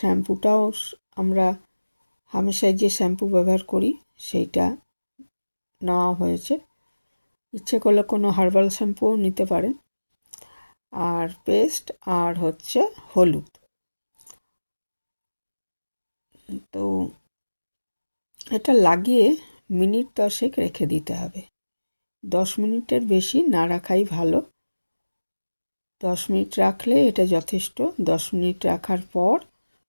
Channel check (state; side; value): inverted; both; correlation -1.00